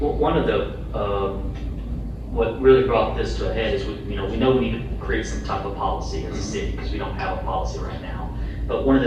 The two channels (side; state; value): both; identical; correlation 1.00